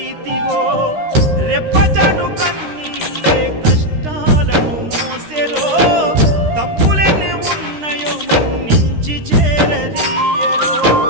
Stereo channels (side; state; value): left; late; 13 ms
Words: రెప్పచాటు కన్నీళ్ళే కష్టాలను మోసెరో తప్పులెన్ని ఉన్నాయో మన్నించి చేరదీయరో